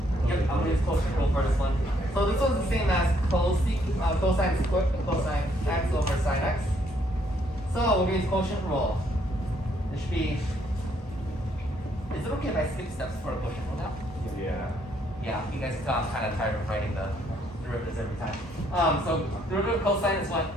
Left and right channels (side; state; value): both; normal; correlation 0.69